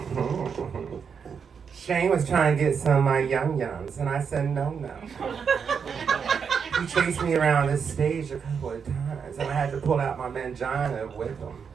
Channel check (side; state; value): left; quieter; 6.5 dB